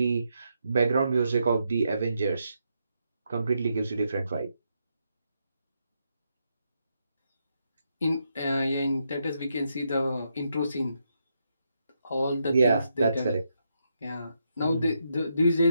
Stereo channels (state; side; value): inverted; both; correlation -0.80